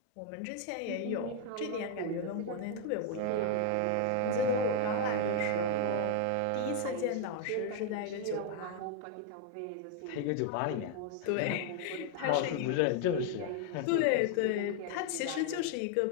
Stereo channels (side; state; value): both; different; correlation 0.00